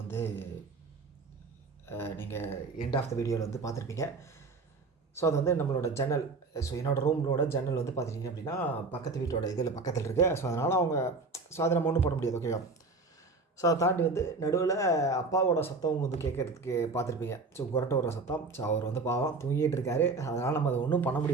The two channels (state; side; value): quieter; left; 3.9 dB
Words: வந்து நீங்கள் எண்ட் ஆஃப் த வீடியோவில் வந்து பார்த்துருப்பீங்க. ஸோ அது வந்து நம்மளோட ஜன்னல், ஸோ என்னோடய ரூமோட ஜன்னல் வந்து பார்த்துட்டிங்க அப்படின்னா பக்கத்து வீட்டோட இதில் பக்கத்தில் இருக்குது. ஸோ அதனால் அவங்க அதை நம்ம ஒன்றும் பண்ண முடியாது. ஓகேவா? ஸோ அதை தாண்டி வந்து நடுவில் அப்பாவோட சத்தம் வந்து கேட்குறதுக்கு பார்த்துருப்பீங்க. ஸோ குரட்டை வர சத்தம். ஸோ அவர் வந்து பாவம் தூங்கிட்டு இருக்காரு. அதனால் நம்ம அதை ஒன்றும் பண்ண